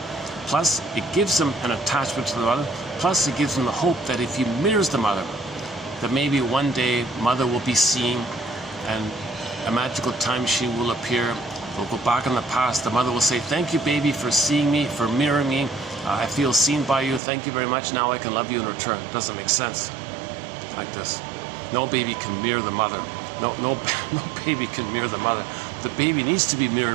Plus, it gives him an attachment to the mother. Plus, it gives him the hope that if he mirrors the mother, that maybe one day mother will be seen and a magical time machine will appear. We'll go back in the past. The mother will say, thank you, baby, for seeing me, for mirroring me. I feel seen by you. Thank you very much. Now I can love you in return. It doesn't make sense like this. No baby can mirror the mother. No baby can mirror the mother. The baby needs to be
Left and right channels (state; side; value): drops out; left; at 17.2 s